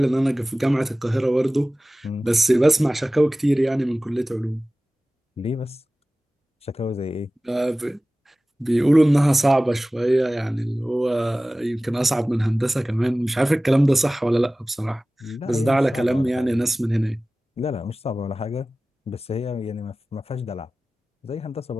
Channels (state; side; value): normal; both; correlation 0.97